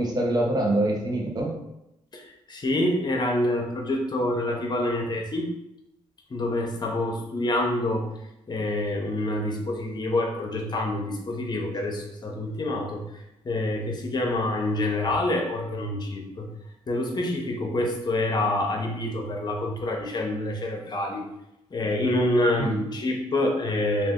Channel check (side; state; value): both; normal; correlation 0.63